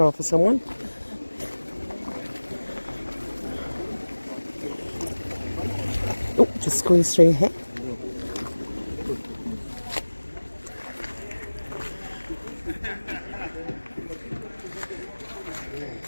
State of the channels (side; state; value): both; inverted; correlation -1.00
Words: for someone. Oh, just squeeze through here.